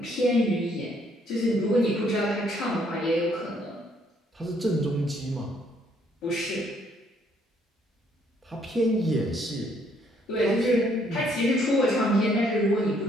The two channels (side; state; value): both; normal; correlation 0.67